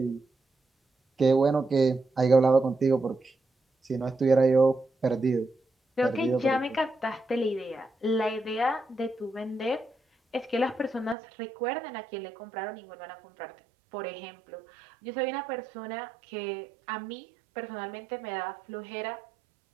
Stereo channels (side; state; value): left; drops out; at 11.2 s